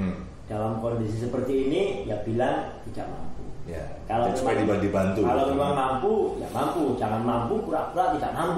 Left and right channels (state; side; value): identical; both; correlation 1.00